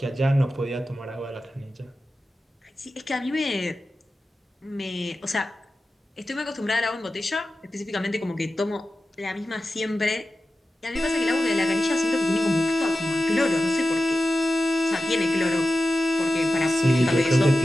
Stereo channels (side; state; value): both; normal; correlation 0.93